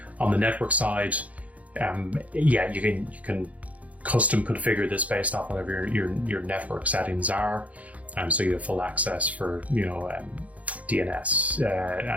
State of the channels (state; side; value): late; left; 0.069 ms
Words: On the network side, yeah, you can custom configure this based off whatever your network settings are. So you have full access for DNS